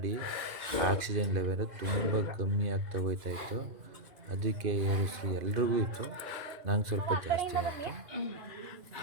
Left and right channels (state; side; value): late; left; 2.5 ms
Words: ಆಕ್ಸಿಜನ್ ಲೆವೆಲ್ ತುಂಬ ಕಮ್ಮಿ ಆಗ್ತಾ ಹೋಯ್ತಾಯಿತ್ತು. ಅದಕ್ಕೆ ಏರಿಸ್ರು ಎಲ್ರಿಗೂ ಇತ್ತು, ನಂಗೆ ಸ್ವಲ್ಪ ಜಾಸ್ತಿ ಆಯಿತು.